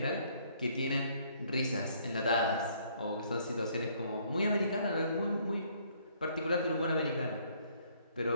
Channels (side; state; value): both; inverted; correlation -0.65